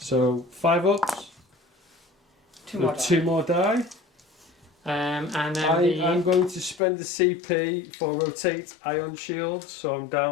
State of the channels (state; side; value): drops out; right; at 6.8 s